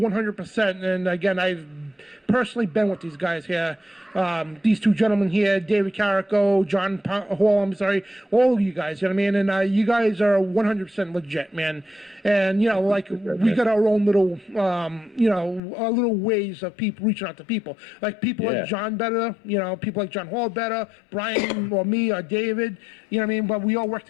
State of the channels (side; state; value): right; drops out; at 15.6 s